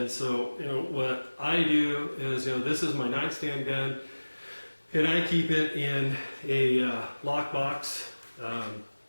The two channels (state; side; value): inverted; both; correlation -1.00